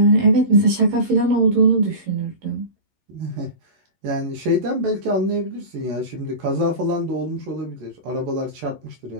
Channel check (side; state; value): left; late; 11 ms